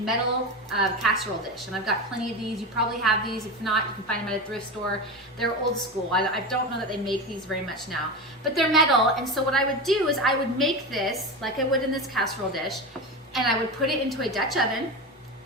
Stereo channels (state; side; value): normal; both; correlation 0.22